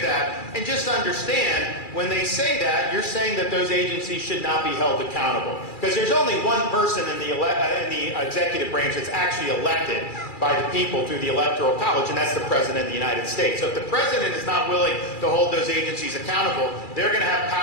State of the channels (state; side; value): late; right; 2.3 ms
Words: that. And just understand, when they say that, you're saying that those agencies should not be held accountable. Because there's only one person in the executive branch that's actually elected by the people through the Electoral College, and that's the President of the United States. So if the President is not willing to hold those agencies accountable, they're going to have